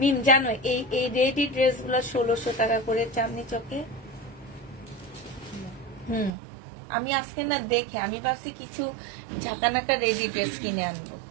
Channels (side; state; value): left; drops out; at 6.3 s